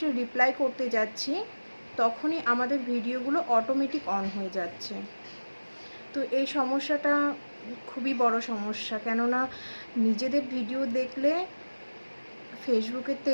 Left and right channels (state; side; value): inverted; both; correlation -1.00